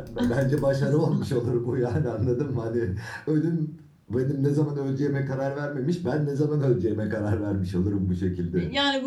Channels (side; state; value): both; identical; correlation 1.00